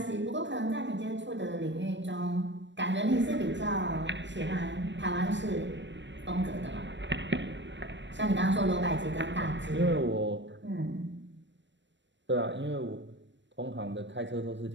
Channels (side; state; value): left; late; 0.53 ms